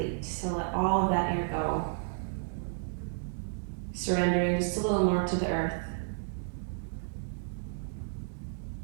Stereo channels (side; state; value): left; silent; 56 dB below the other